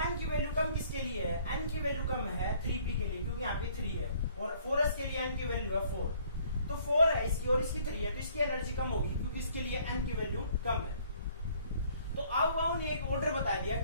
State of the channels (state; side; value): inverted; both; correlation -0.59